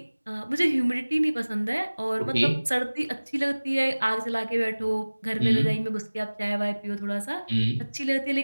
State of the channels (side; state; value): both; inverted; correlation -1.00